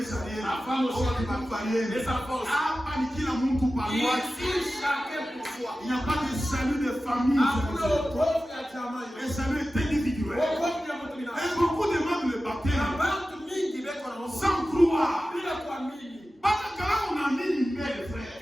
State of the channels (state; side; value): normal; both; correlation 0.94